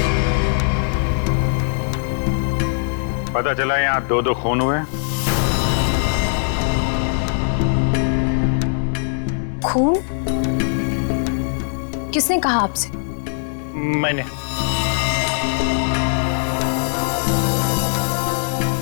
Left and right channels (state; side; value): silent; right; digital silence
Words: पता चला यहाँ 2 खून हुए। खून? किसने कहा आपसे? मैंने।